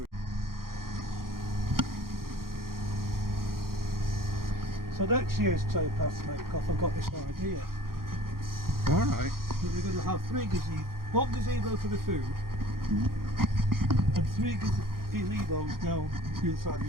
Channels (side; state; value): left; late; 0.92 ms